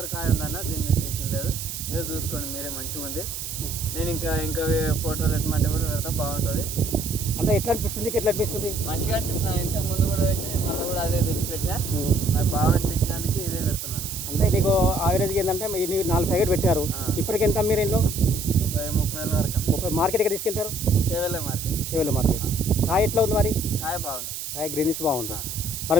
కాయ ఉందన్న. దీన్ని టెన్షన్ లేదు. ఏదో చూసుకోండి మీరే, మంచిగా ఉంది. నేను ఇంకా ఫోటోలు ఎట్టమంటే కూడా పెడతా, బాగుంటుంది. అంటే ఎట్లా అనిపిస్తుంది? ఎట్లా అనిపిస్తుంది? మంచిగా అనిపిస్తుంది. ఇంతకు ముందు కూడా పెట్టినా, మళ్ళీ కూడా అదే తెచ్చి పెట్టినా. నాకు బాగా అనిపించినందుకు ఇదే పెడుతున్నాను. అంటే నీకు యావరేజ్గా ఏంటంటే నీకు 4 ప్యాకెట్ పెట్టారు. ఇప్పటికి ఎంత మీరు ఇంట్లో? 30,000 వరకు. 30. మార్కెట్ ఎక్కడ తీసుకెళ్తారు? చేవెళ్ళ మార్కెట్. చేవెళ్ళ మార్కెట్. కాయ ఎట్లా ఉంది మరి? కాయ బాగుంది. కాయ గ్రీనిష్ బాగుంది. మరి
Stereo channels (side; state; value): right; noise; hiss, 7 dB below the sound